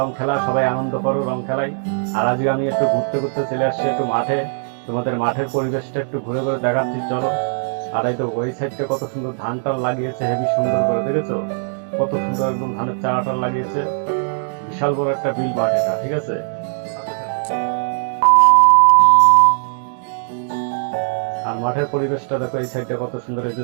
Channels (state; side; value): silent; left; 65 dB below the other